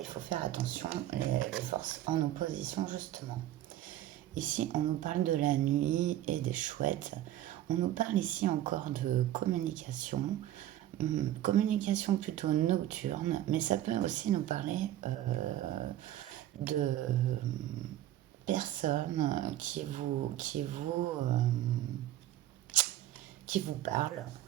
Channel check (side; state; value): left; quieter; 13.0 dB